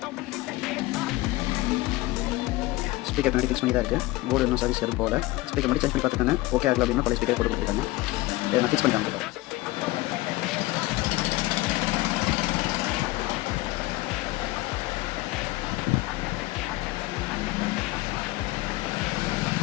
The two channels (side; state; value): right; quieter; 19.5 dB